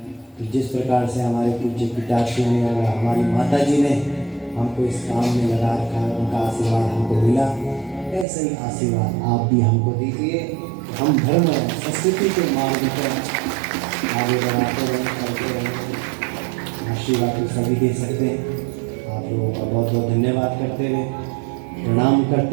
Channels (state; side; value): drops out; left; at 8.2 s